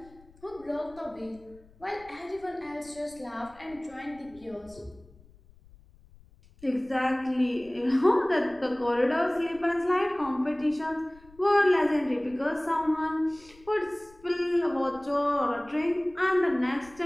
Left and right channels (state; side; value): noise; left; rumble, 26 dB below the sound